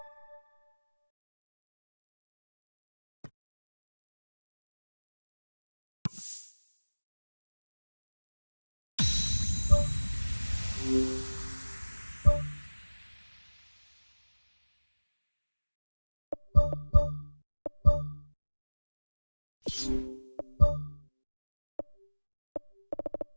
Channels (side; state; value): both; inverted; correlation -1.00